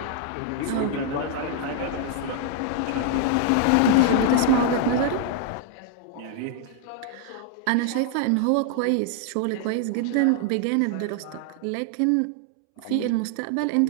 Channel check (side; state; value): both; different; correlation 0.00